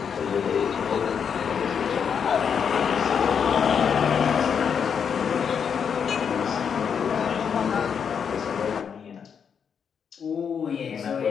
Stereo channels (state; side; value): quieter; right; 7.1 dB